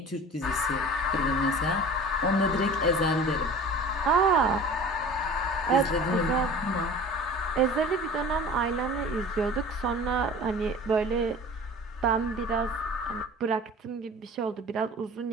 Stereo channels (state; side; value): normal; both; correlation 0.41